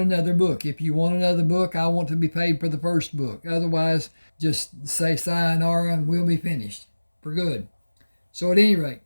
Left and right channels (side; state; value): both; inverted; correlation -1.00